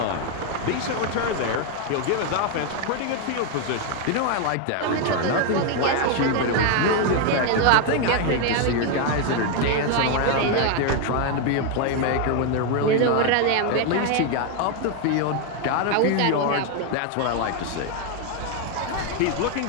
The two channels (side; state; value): both; different; correlation 0.01